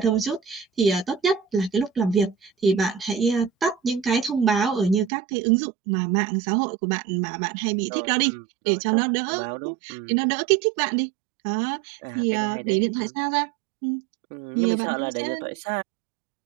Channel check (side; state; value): left; drops out; at 5.1 s